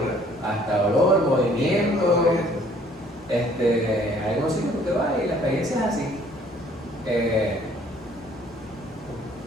hasta olor, movimiento. Hay algunos sitios que usted va y la experiencia es así.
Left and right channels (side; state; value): both; normal; correlation 0.58